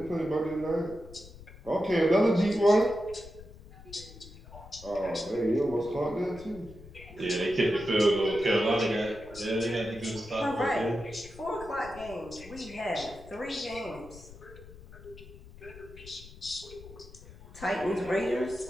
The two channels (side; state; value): left; noise; rumble, 18 dB below the sound